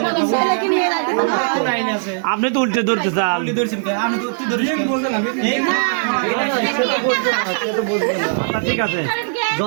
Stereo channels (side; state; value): left; silent; digital silence